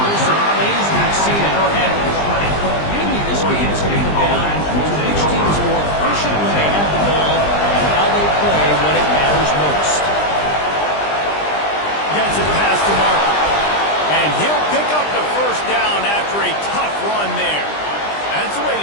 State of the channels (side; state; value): right; late; 20 ms